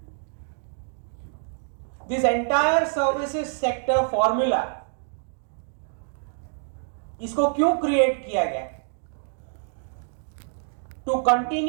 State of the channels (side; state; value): left; silent; digital silence